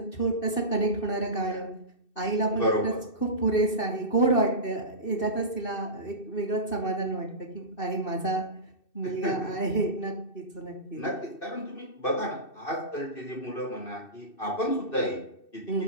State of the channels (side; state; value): right; late; 2.6 ms